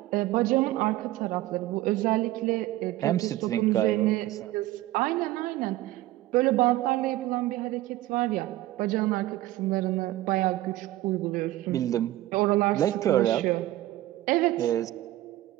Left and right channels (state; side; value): quieter; left; 16.0 dB